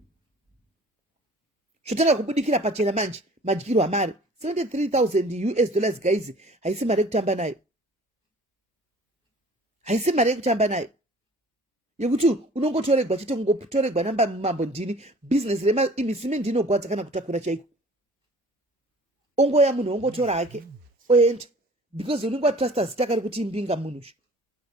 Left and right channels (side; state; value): both; normal; correlation 0.49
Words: zvotanga kubudikira pachena manje madyiro amari 73,000 US dollars guys haisi mari yekutamba nayo haisi mari yekutamba nayo yekuti unongotoregwa chete kungotoregwa namba mumambo ndini business imisime ndinogwadza kana kutakura chaiko ongoya munhu ongotora hake oenda because unenge watrasta zita kari kuti imbinga munhu